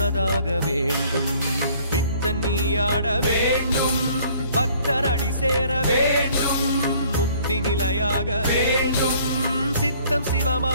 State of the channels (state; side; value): inverted; both; correlation -0.57